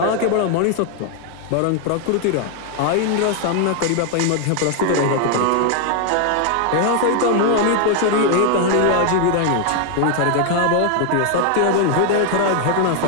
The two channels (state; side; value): different; both; correlation 0.00